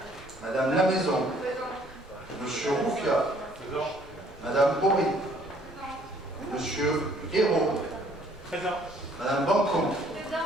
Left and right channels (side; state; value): both; normal; correlation 0.60